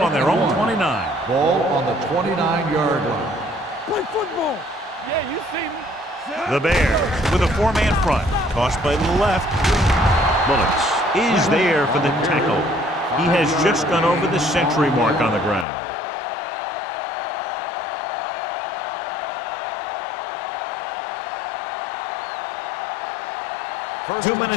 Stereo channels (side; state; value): right; drops out; at 15.7 s